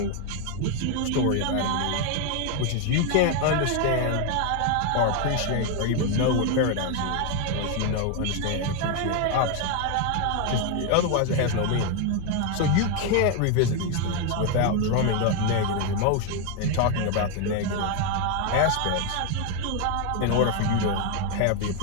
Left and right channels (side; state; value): both; different; correlation 0.01